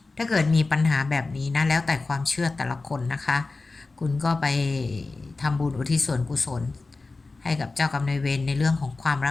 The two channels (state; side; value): quieter; right; 3.6 dB